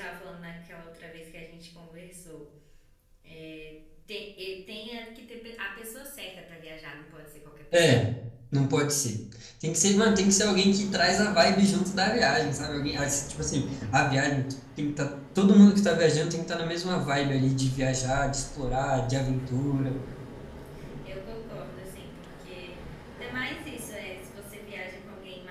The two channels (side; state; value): both; identical; correlation 1.00